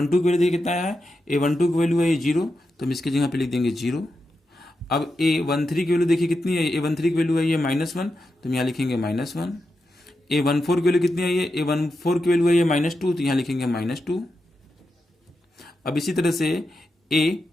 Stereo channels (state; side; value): normal; both; correlation 0.88